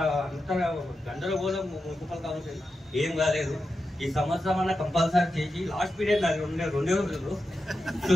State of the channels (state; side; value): normal; both; correlation 0.90